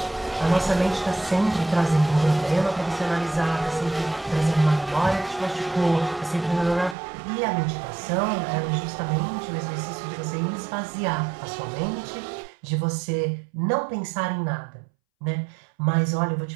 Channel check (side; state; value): left; drops out; at 7.0 s